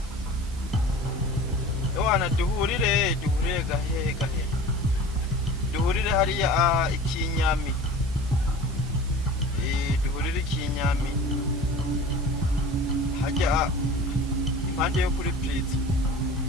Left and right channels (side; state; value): both; normal; correlation 0.39